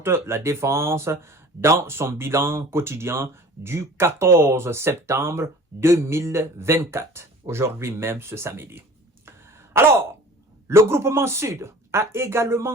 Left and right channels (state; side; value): normal; both; correlation 0.45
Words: la défense dans son bilan quotidien du 14 septembre 2024, aujourd'hui même ce samedi. Alors, le groupement Sud a